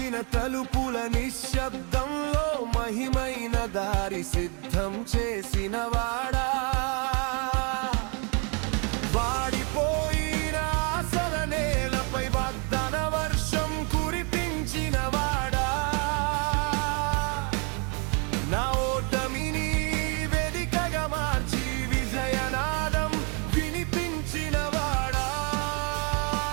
తలుపుల నిశ్శబ్దంలో మహిమైన దారి సిద్ధం చేసినవాడా, వాడిపోయిన ఆశల నేలపై వాగ్దాన వర్షం కురిపించినవాడా, నా ఓటమిని వేదికగా మార్చి విజయనాదం వినిపించినవాడా,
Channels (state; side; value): quieter; left; 35.6 dB